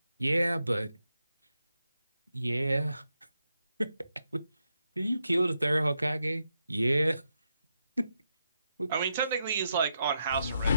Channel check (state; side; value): inverted; both; correlation -0.83